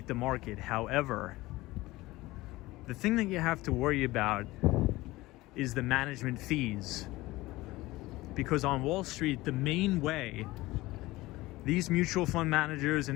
the market. However, the thing that you have to worry about is the management fees. Because on Wall Street, the main way these mutual fund managers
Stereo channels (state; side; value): quieter; right; 19.2 dB